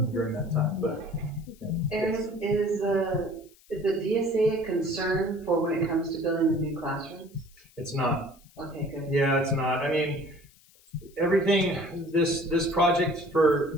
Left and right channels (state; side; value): noise; left; hiss, 28 dB below the sound